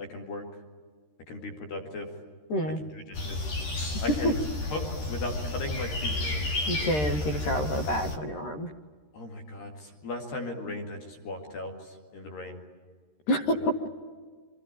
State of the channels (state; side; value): late; right; 13 ms